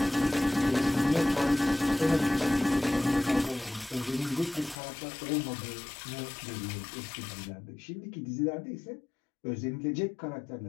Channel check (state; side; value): drops out; right; at 4.8 s